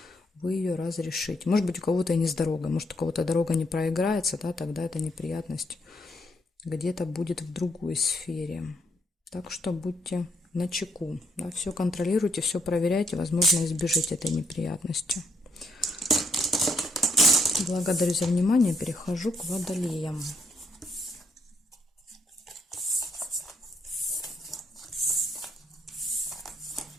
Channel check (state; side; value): normal; both; correlation 0.73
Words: вы ее разрешите. Может быть, у кого-то и не с дорогой, может, у кого-то дорога не проиграется, да, тогда эта неприятность где-то будет в другой сфере. Так что будьте начеку, да, все контролируйте, все проверяйте, возможно, избежите этой неприятности. Благодарю за внимание, перехожу к водолеям.